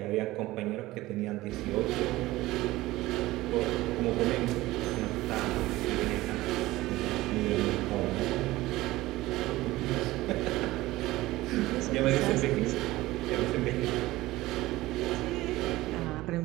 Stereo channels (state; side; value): quieter; left; 18.0 dB